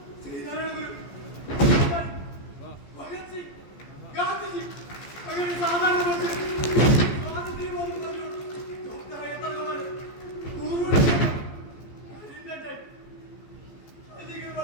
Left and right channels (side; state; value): right; late; 14 ms